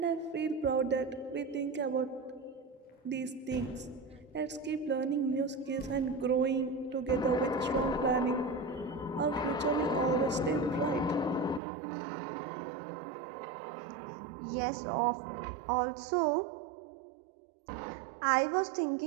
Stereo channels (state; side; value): drops out; left; at 11.6 s